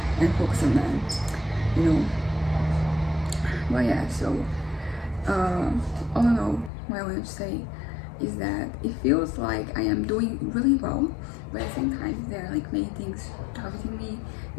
and focus on them, you know. Well, yeah, so all in all, what I want to say is that it feels like I am doing really well, but at the same time there are like many things targeting me,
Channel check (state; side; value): drops out; right; at 6.7 s